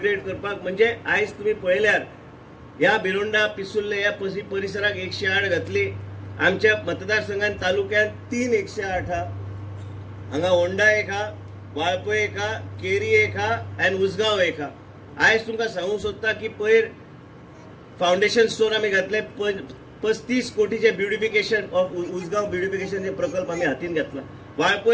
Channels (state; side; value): identical; both; correlation 1.00